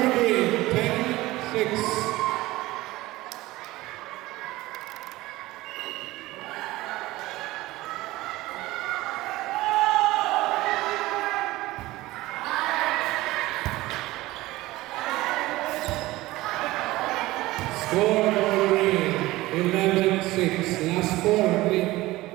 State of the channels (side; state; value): left; quieter; 18.5 dB